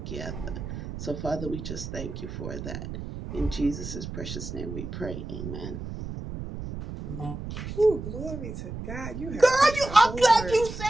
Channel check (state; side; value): noise; right; rumble, 8 dB below the sound